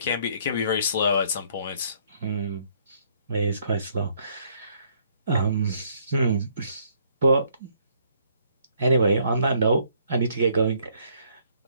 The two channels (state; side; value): inverted; both; correlation -0.66